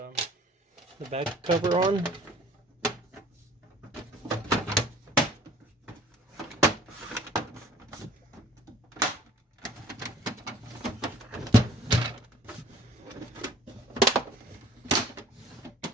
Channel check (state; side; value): normal; both; correlation 0.51